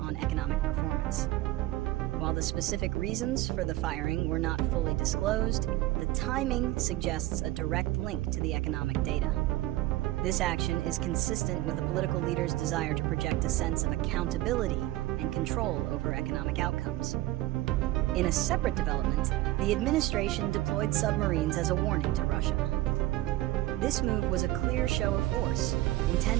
economic performance. While the specific reasons for the firing were not fully disclosed, the timing suggests a direct link to the economic data. This action is consistent with a political leader's desire to project a sense of accountability and control over economic outcomes. In a separate development, the administration deployed submarines as a warning to Russia. This move was a clear show of force,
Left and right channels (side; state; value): left; quieter; 16.7 dB